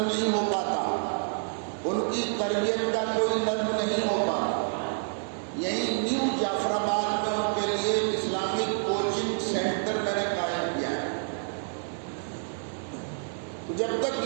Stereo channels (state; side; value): silent; left; 57 dB below the other